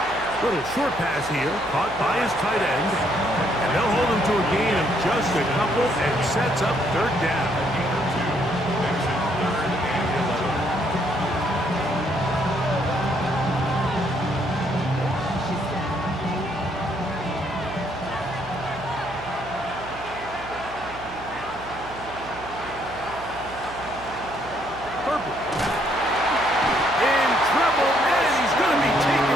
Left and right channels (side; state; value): right; noise; hum, 16 dB below the sound